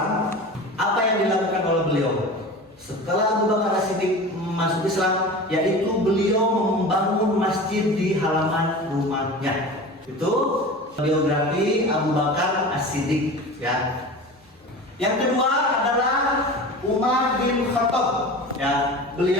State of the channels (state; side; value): normal; both; correlation 0.34